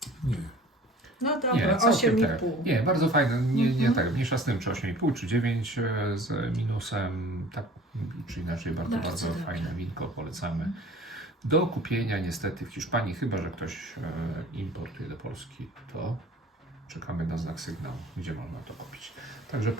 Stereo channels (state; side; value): normal; both; correlation 0.47